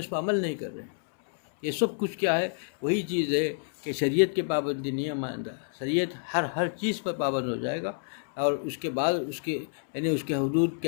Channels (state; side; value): silent; right; 59 dB below the other